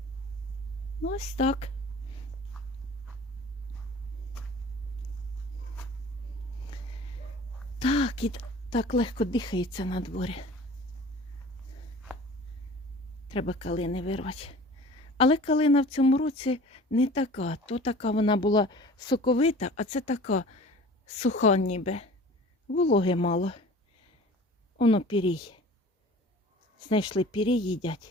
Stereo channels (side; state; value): both; normal; correlation 0.43